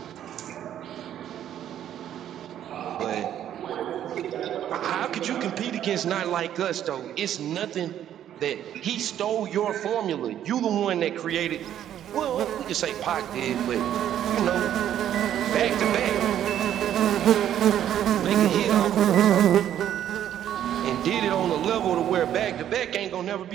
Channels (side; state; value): left; quieter; 10.8 dB